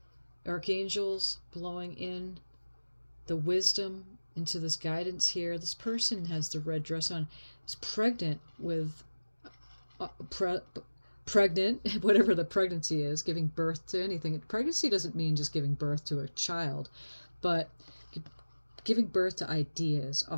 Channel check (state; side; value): inverted; both; correlation -1.00